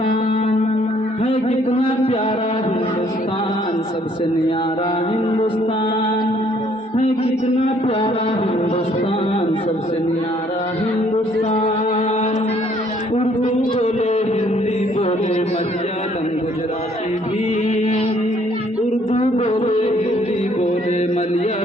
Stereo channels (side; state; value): both; normal; correlation 0.63